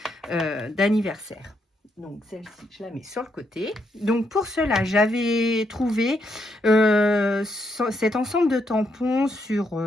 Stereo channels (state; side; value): normal; both; correlation 0.77